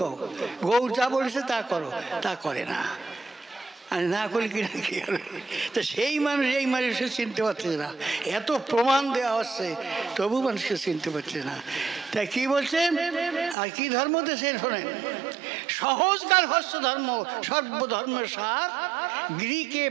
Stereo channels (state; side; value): drops out; left; at 13.6 s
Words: কও। গৌর যা বলেছে তা করো, তা করে না। আর না করলে কি না কি হবে? তো সেই মানুষ এই মানুষকে চিনতে পারছে না, এত প্রমাণ দেওয়া হচ্ছে তবু মানুষকে চিনতে পারছে না। তাই কি বলছেন আর কি ধর্ম দেশের শোনেন, সহজকার হস্য ধর্ম সর্বধর্মের সার, গৃহকে